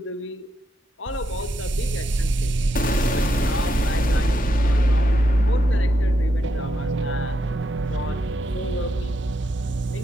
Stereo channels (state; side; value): normal; both; correlation 0.82